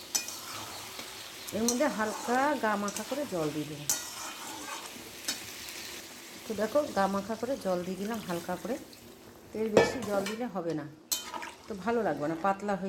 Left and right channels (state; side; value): identical; both; correlation 1.00